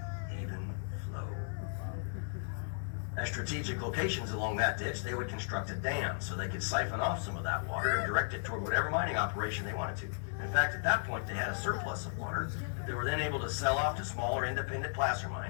even flow. At strategic locations along that ditch, they would construct a dam so they could siphon off some of that water and direct it toward whatever mining operation they wanted to. In fact, at that point, they had a surplus of water that they were then able to sell off to smaller independent placer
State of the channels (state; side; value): silent; right; digital silence